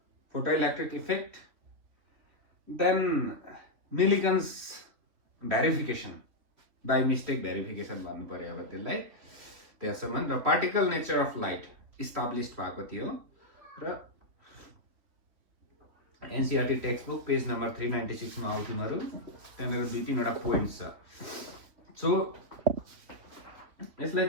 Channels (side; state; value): left; late; 3.3 ms